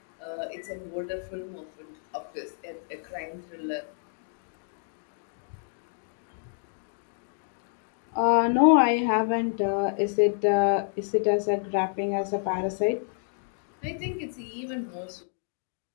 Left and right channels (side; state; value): right; silent; digital silence